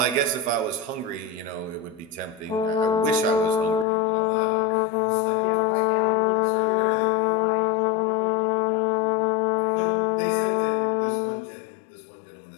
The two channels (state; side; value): drops out; right; at 3.9 s